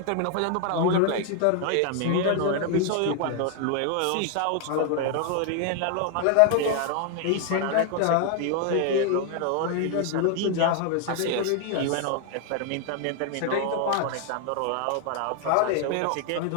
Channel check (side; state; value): both; different; correlation 0.00